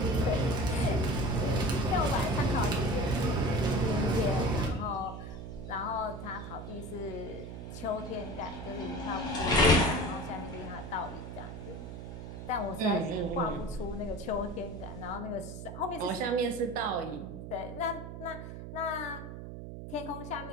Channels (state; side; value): noise; right; hum, 9 dB below the sound